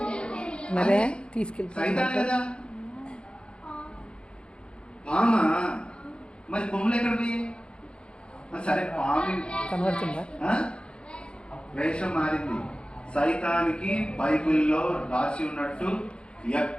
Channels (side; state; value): right; late; 0.054 ms